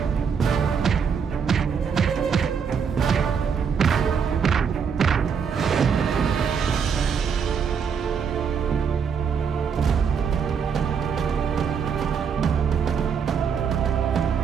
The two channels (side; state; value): left; quieter; 6.6 dB